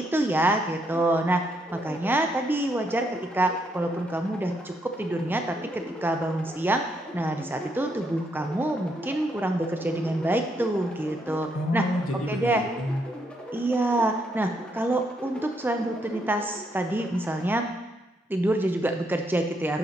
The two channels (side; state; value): both; normal; correlation 0.76